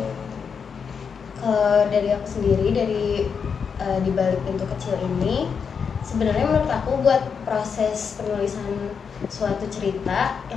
Kalau dari aku sendiri, dari Di Balik Pintu Kecil ini, sebenarnya menurut aku buat proses penulisan suatu cerita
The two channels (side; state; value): right; quieter; 6.3 dB